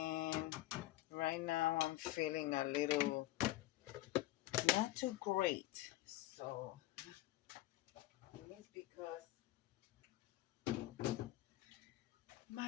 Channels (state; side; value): quieter; right; 16.5 dB